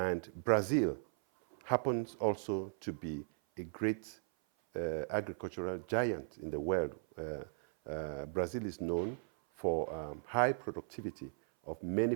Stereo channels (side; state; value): left; silent; 53 dB below the other